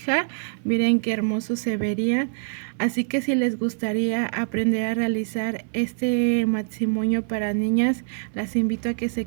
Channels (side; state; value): left; silent; digital silence